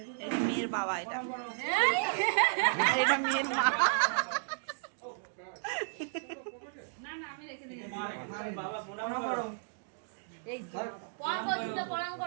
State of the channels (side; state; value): left; silent; digital silence